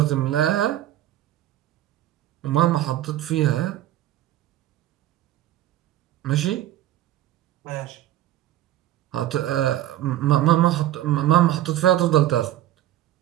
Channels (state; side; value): quieter; left; 13.4 dB